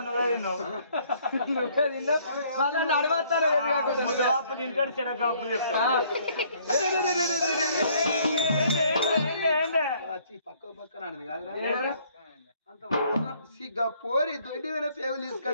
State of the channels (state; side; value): inverted; both; correlation -0.62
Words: నువ్వే తిన్నావు నువ్వే తిన్నావు వాళ్ళని అడగొస్తాను పప్పు తింటాడు చెరకప్పులు చెప్తాను పక్క పక్కన కాదురా అంత సిగ్గా పోరి దొడ్డి వేరే పేగులు